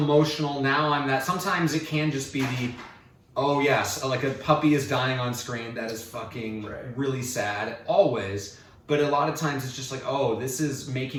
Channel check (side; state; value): both; identical; correlation 1.00